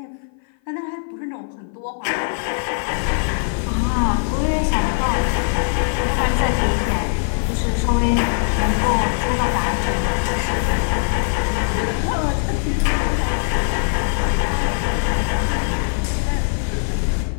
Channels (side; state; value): right; silent; 56 dB below the other